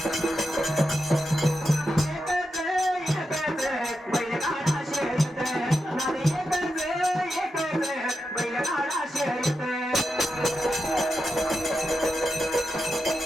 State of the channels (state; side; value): normal; both; correlation 0.88